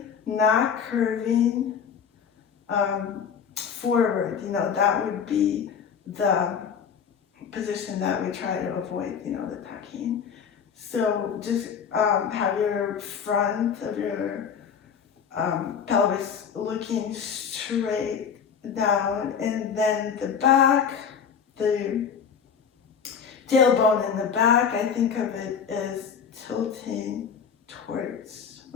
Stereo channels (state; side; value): quieter; right; 7.0 dB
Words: not curving forward. You know, that would be the position that we try to avoid, you know, the tucking. So just have your front of your pelvis looking straight down, and then the back, the tailbone in the back, I think of it as tilting towards